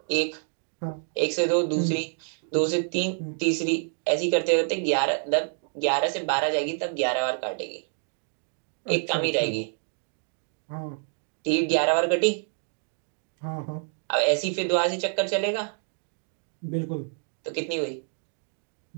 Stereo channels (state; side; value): silent; left; 60 dB below the other